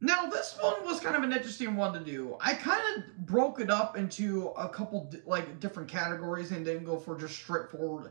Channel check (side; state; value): left; silent; digital silence